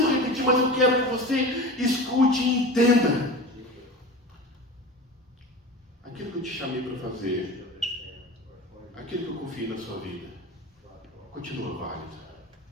repetir, mas eu quero que você escute e entenda. Aquilo que eu te chamei para fazer, aquilo que eu confiei na sua vida, continua válido.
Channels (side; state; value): both; normal; correlation 0.32